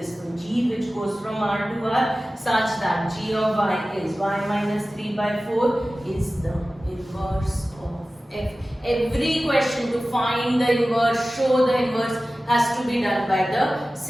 So g, which goes from r to r, such that g of y is y minus 3 by 4 is the inverse of f. Every question to find the inverse, show the inverse, has to be done by the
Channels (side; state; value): both; normal; correlation 0.96